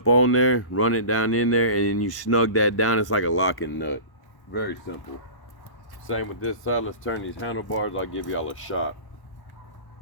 on there, run it down in there, and then you snug that down. It's like a locking nut. Very simple. Same with this side. Let's turn these handlebars. I'll give y'all a shot.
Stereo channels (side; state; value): right; late; 1.1 ms